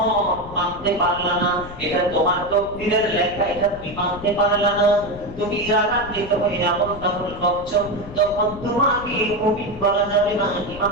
মানতে পারলা না, এটা তোমার তকদীরের লেখা, এটা তুমি মানতে পারলা না, তুমি রাগান্বিত হয়ে আমল তামল করছো, তখন তোমাকে মুমিন বলা যাবে না,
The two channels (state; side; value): noise; left; rumble, 15 dB below the sound